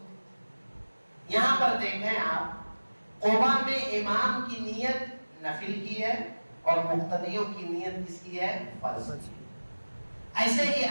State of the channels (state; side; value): inverted; both; correlation -1.00